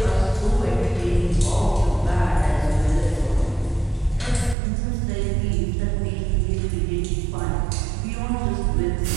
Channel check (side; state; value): left; drops out; at 4.5 s